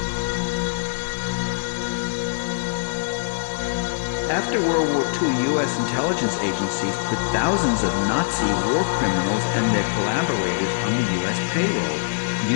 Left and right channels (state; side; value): silent; right; digital silence